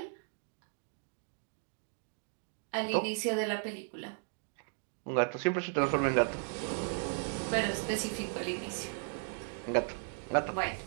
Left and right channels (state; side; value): silent; left; 54 dB below the other